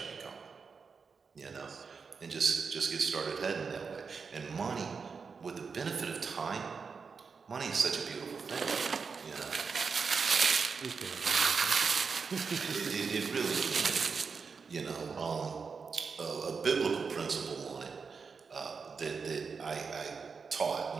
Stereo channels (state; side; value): quieter; left; 5.3 dB